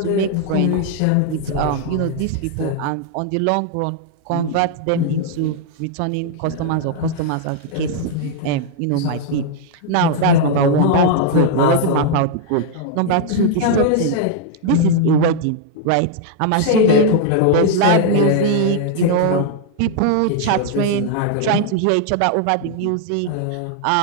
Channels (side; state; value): both; different; correlation -0.01